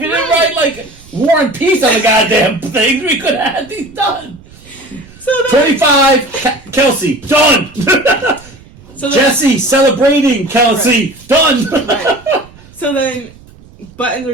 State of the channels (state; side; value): noise; right; rumble, 23 dB below the sound